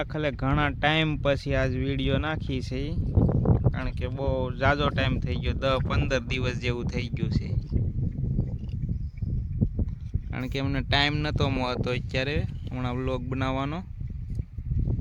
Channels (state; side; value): identical; both; correlation 1.00